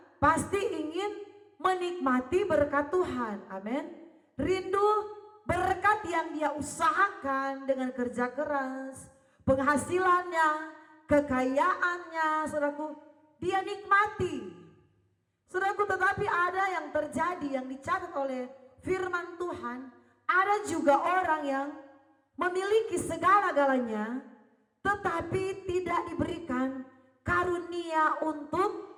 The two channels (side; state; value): both; identical; correlation 1.00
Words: pasti ingin menikmati berkat Tuhan. Amin. Rindu berkat yang dia usahakan dengan kerja keras, penghasilannya, kekayaannya, saudaraku, dia nikmati. Saudaraku, tetapi ada yang terjadi, yang dicatat oleh firman Tuhan, ada juga orang yang memiliki segala-galanya, tetapi tidak diberikan karunia untuk